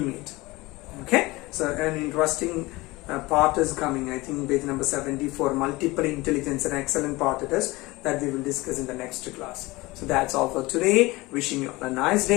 Okay? So an interesting part is coming, I think page number 74, multiple intelligence, an excellent part it is that we will discuss in the next class. So that's all for today. Wishing you all a nice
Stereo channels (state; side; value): quieter; right; 21.5 dB